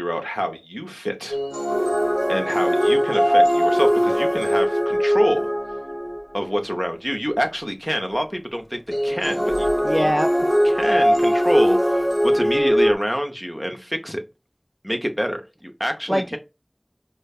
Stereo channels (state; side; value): identical; both; correlation 1.00